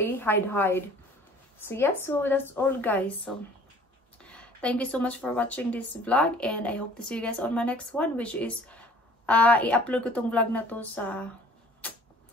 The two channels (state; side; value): normal; both; correlation 0.51